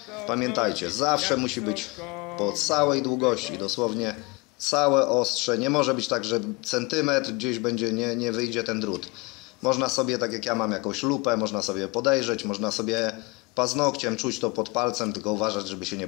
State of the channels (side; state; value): right; quieter; 26.8 dB